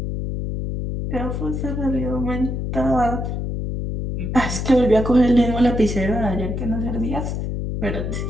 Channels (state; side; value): noise; left; hum, 3 dB below the sound